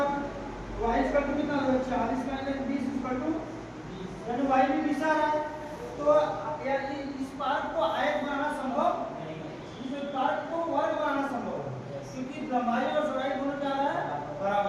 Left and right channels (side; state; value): both; identical; correlation 1.00